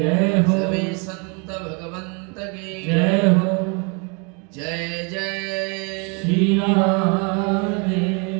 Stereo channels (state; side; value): quieter; left; 33.3 dB